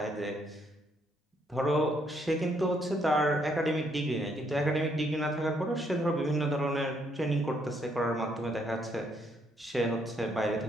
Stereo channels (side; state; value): both; normal; correlation 0.72